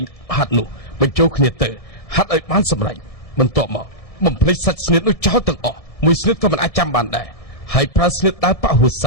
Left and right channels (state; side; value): late; right; 1.6 ms